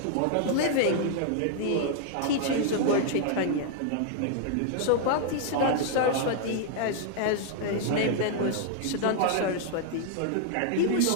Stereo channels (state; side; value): different; both; correlation -0.01